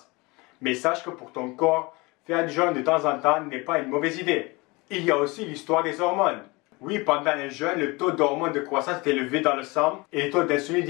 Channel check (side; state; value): right; quieter; 24.9 dB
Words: Mais sache que pour ton corps, faire du jeûne de temps en temps n'est pas une mauvaise idée. Il y a aussi l'histoire des hormones. Oui, pendant un jeûne, le taux d'hormones de croissance est élevé dans le sang et le taux d'insuline